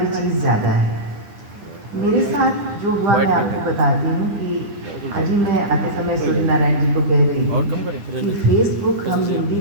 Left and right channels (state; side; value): late; left; 9.9 ms